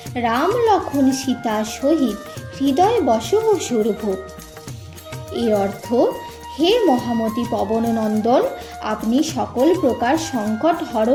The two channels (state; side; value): identical; both; correlation 1.00